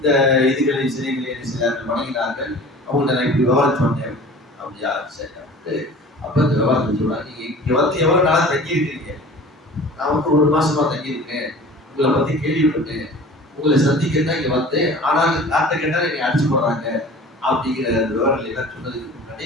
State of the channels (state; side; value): normal; both; correlation 0.42